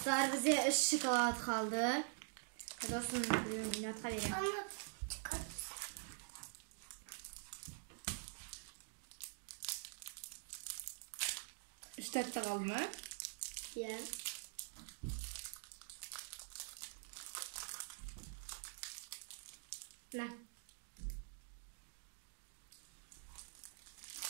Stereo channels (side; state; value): left; silent; digital silence